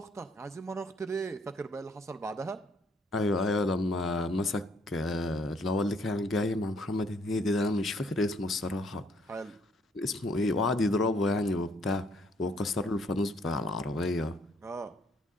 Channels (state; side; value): normal; both; correlation 0.66